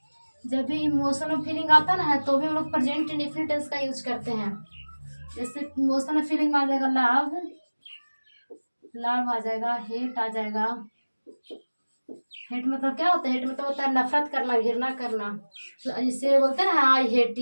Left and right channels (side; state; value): both; inverted; correlation -1.00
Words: जब भी इमोशन और फीलिंग आता ना है तो भी हम लोग प्रेजेंट इंडेफिनिट टेंस का यूज करते हैं। जैसे इमोशन और फीलिंग में आ जाएगा लव, लव आ जाएगा, हेट आ जाएगा। हेट मतलब क्या होता है? हेट मतलब होता है नफरत करना, घृणा करना। तो जिससे बोलते हैं ना I hate